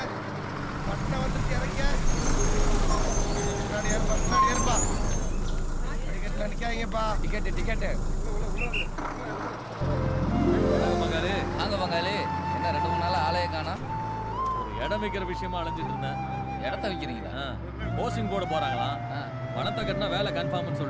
பட்டை வந்துட்டு இறங்க. முன்னாடி ஏறுப்பா. டிக்கெட்ல நிக்காதீங்கப்பா. டிக்கெட். வாங்க என்ன 2-3 நாள் ஆளையே காணோம்? ஒரு இடம் வைக்கிற விஷயமா அலைஞ்சிட்டு இருந்தேன். இடத்த வைக்கிறீங்களா? போஸ்டிங் போட போறாங்களாம். பணத்தை கட்டினா வேலை கன்ஃபார்ம்னு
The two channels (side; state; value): both; identical; correlation 1.00